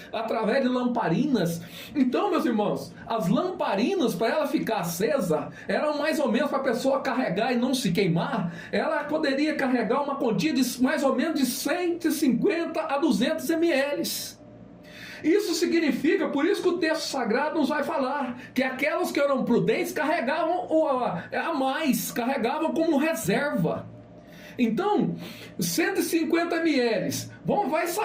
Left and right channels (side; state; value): both; identical; correlation 1.00